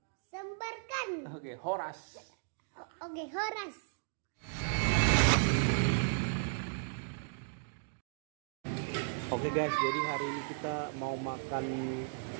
Sebarkan. Oke, Horas. Oke, Horas. Oke guys, jadi hari ini kita mau makan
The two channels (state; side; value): silent; left; digital silence